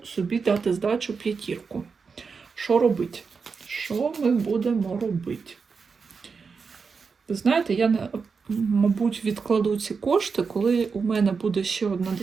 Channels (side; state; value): left; quieter; 5.2 dB